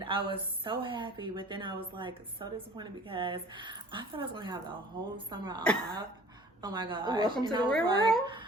I was so happy, but then I was like so disappointed because I thought I was going to have the whole summer off. Oh my gosh. Welcome to And the I was real like, world.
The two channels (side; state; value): both; normal; correlation 0.48